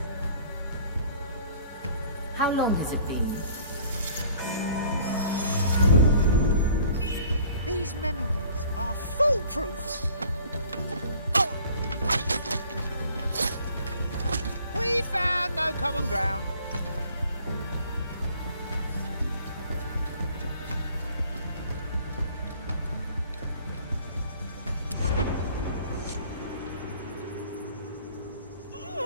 How long has it been? These memories are foolproof. Oh. We found no common ground.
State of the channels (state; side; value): inverted; both; correlation -0.53